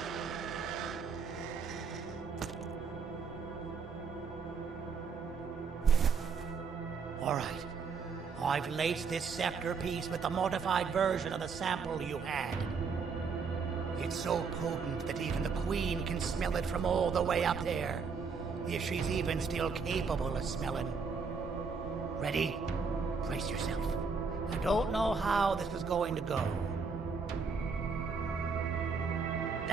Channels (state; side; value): quieter; left; 5.2 dB